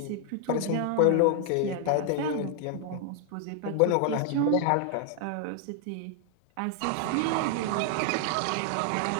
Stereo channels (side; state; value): both; different; correlation 0.00